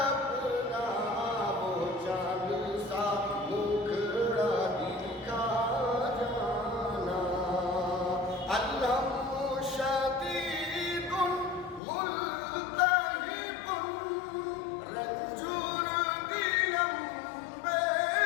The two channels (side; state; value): right; drops out; at 11.8 s